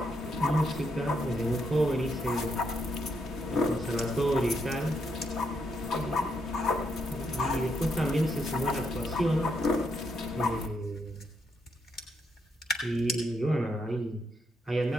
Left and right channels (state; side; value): normal; both; correlation 0.78